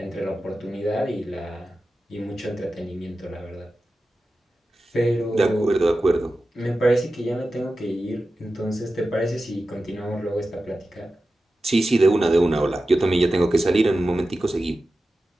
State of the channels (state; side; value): normal; both; correlation 0.93